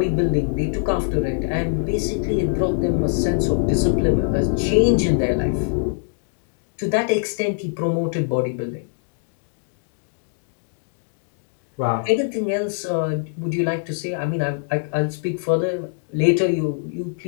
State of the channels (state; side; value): silent; right; digital silence